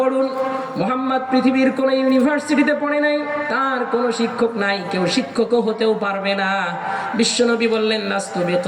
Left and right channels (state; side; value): identical; both; correlation 1.00